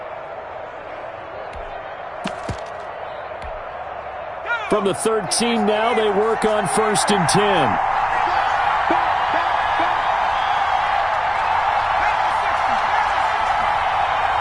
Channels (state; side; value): identical; both; correlation 1.00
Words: From the 13 now, they work on 1st and 10.